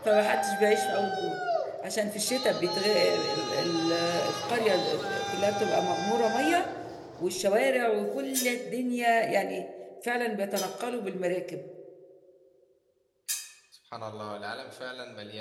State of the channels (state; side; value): identical; both; correlation 1.00